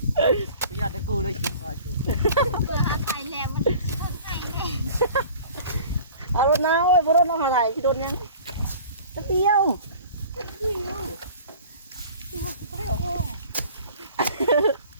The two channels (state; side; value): inverted; both; correlation -0.45